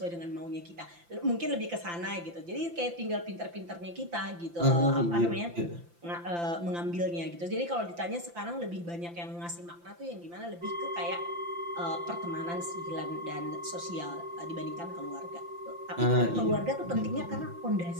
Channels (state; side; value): late; left; 5.8 ms